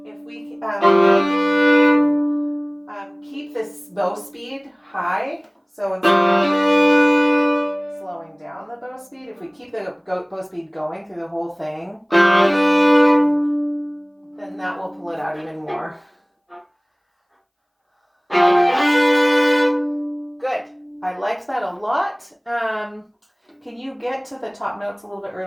if we keep this bow speed high. So instead of slowing down the bow speed, if we keep the bow speed going through the whole thing, then that will pull it out even more. Good. I liked that a lot. Can you get to the top notes a little bit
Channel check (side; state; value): both; identical; correlation 1.00